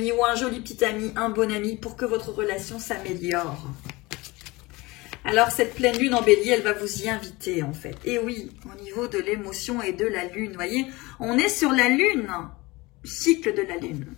ou un joli petit ami, un bon ami pour que votre relation s'améliore. Alors cette pleine lune en bélier, elle va vous y inviter en fait. Et oui, au niveau de l'émotion et de la lune, vous voyez, on est sur la lune, cycle de la lune,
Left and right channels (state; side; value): quieter; right; 22.5 dB